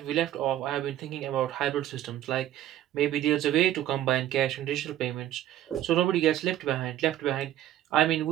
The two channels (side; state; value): left; quieter; 12.6 dB